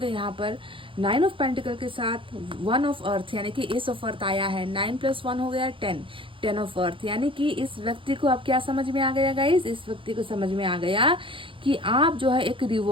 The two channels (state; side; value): late; left; 0.25 ms